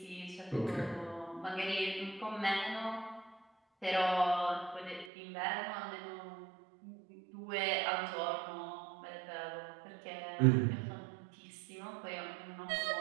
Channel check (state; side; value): drops out; left; at 5.1 s